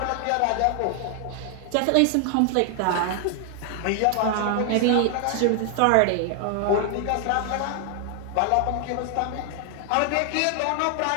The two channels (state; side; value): different; both; correlation 0.00